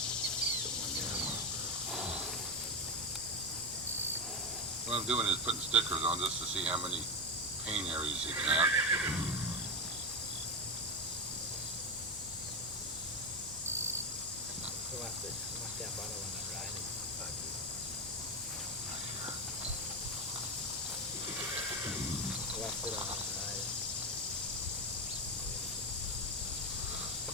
one down. What I'm doing is putting stickers on just to see how many pain areas you can have. We'll have to have bottle on that ride. We'll have to sit on that ride.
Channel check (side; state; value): both; normal; correlation 0.12